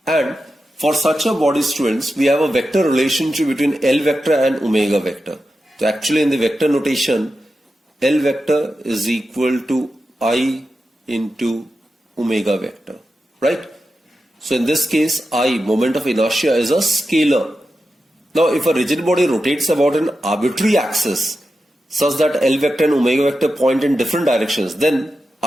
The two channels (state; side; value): normal; both; correlation 0.90